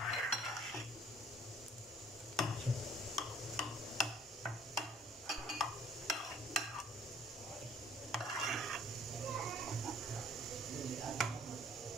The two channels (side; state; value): both; normal; correlation 0.55